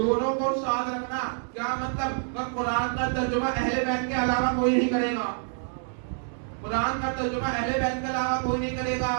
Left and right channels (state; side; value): silent; left; digital silence